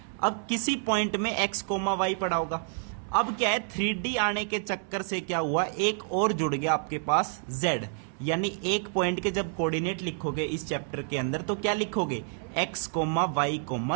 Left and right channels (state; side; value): silent; left; 59 dB below the other